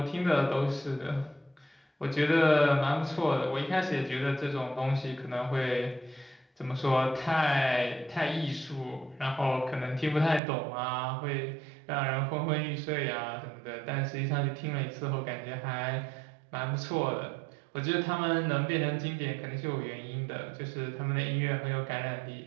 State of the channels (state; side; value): drops out; left; at 10.4 s